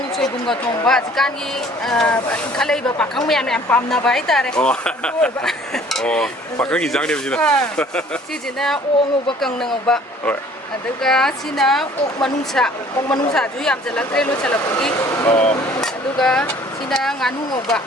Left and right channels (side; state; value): both; normal; correlation 0.54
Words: 소이bunga 통바. 시간이 칼레이바 박항 매양 빰나바 이따래. 박강이 장님 지나. 시지나 옥오바 깡는 오바. aduga sina ok manungsa ju yam jalak re lo chalak gi aduga sina nganu ngoba